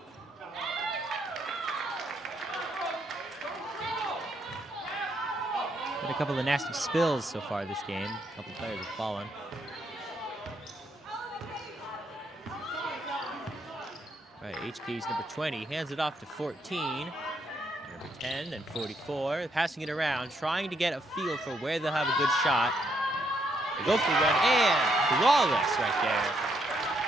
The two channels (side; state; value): both; normal; correlation 0.75